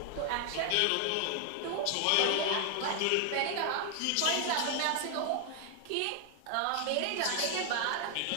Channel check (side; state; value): both; different; correlation 0.00